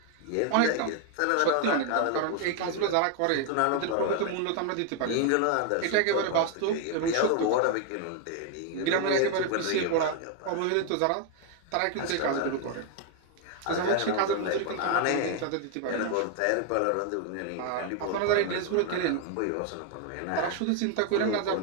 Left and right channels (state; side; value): different; both; correlation 0.00